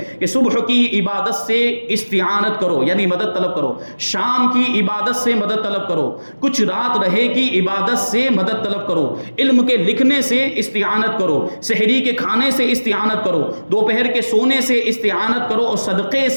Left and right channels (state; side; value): inverted; both; correlation -1.00